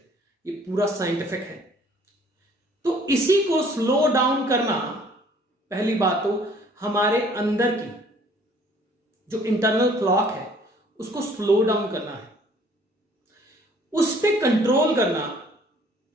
ये पूरा साइंटिफिक है। तो इसी को स्लो डाउन करना, पहली बात तो हमारे अंदर की जो इंटरनल क्लॉक है उसको स्लो डाउन करना है, उस पे कंट्रोल करना।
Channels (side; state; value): both; normal; correlation 0.57